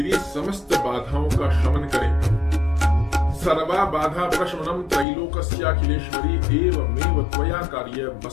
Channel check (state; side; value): drops out; right; at 5.1 s